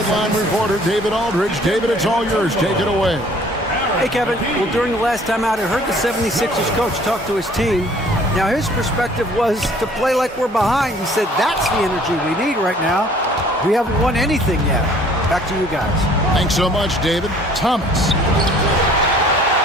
reporter, David Aldridge. David, it's all yours. Take it away. Hey, Kevin. Well, during the last time out, I heard the 76ers coach talk to his team. Now, his perspective was to play like we're behind. He said that's the energy we need right now. We haven't won anything yet. Back to you guys. Thanks so much, David. Thomas.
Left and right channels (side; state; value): both; normal; correlation 0.55